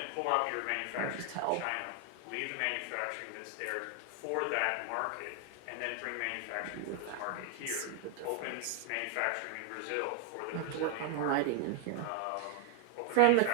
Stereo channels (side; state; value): both; different; correlation 0.00